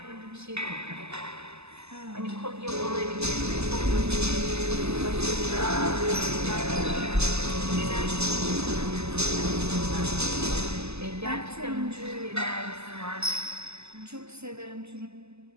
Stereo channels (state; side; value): late; left; 0.80 ms